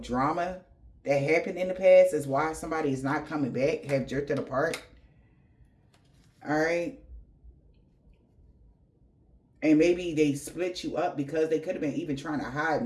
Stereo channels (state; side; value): identical; both; correlation 1.00